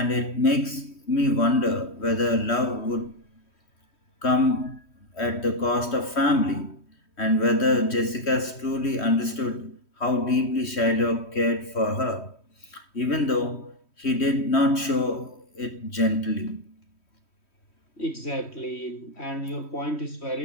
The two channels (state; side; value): late; right; 3.1 ms